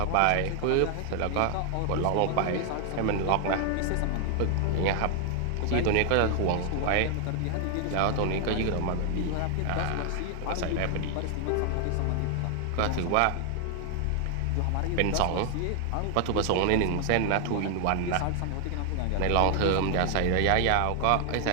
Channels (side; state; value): both; different; correlation 0.00